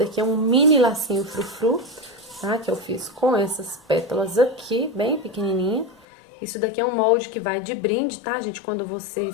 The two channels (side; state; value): right; drops out; at 6.1 s